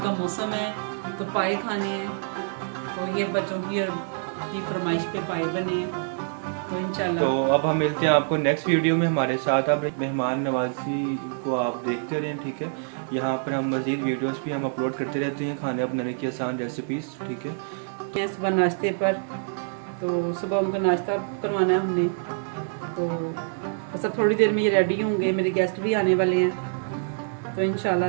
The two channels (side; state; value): left; silent; digital silence